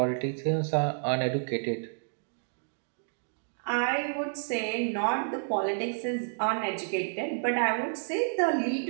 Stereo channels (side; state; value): left; silent; digital silence